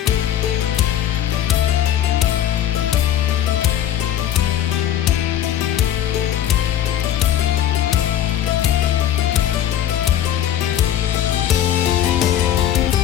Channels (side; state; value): right; quieter; 11.0 dB